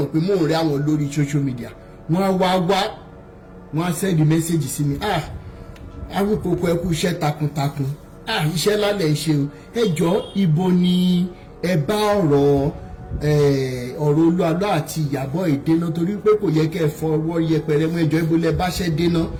pé mò ń rí àwọn lórí social media wọ́n á wọ́n á send message sí mi Awikoko ẹ kú iṣẹ́ takuntakun iṣẹ́ lálẹ́ ṣe o ẹ jọ̀ọ́ ibo ni ẹ bá ọ̀rọ̀ Olúalọ́ àti Ìyábọ̀ ìdènà torí pé kò yẹ kẹ́ ẹ fọwọ́ yẹpẹrẹ mọ́ ẹjọ́ ibo lẹ bá ṣẹ́ dènà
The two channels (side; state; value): both; identical; correlation 1.00